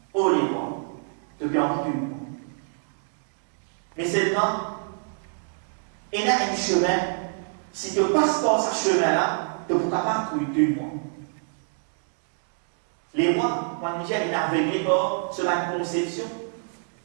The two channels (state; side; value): silent; left; digital silence